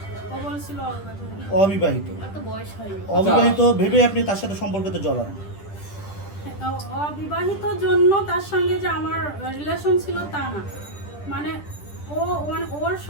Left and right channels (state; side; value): late; right; 10 ms